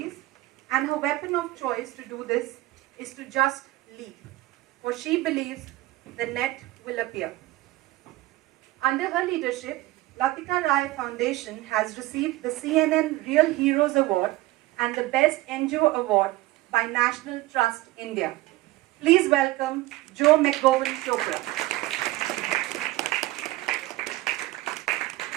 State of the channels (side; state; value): left; quieter; 18.0 dB